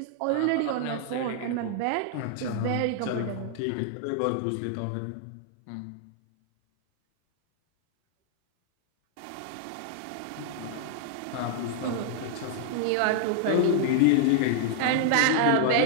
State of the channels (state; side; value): different; both; correlation -0.01